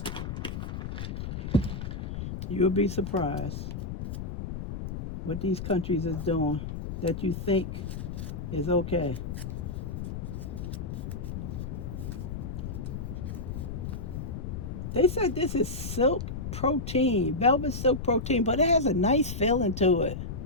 You'll be surprised what these countries is doing that you think is okay. They said this is silk protein, velvet silk protein, but it has a nice feeling to it.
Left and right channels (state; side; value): noise; left; rumble, 5 dB below the sound